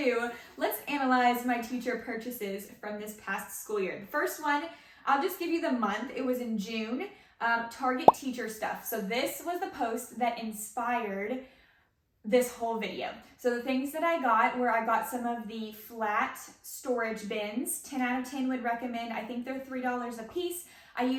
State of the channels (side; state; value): both; identical; correlation 1.00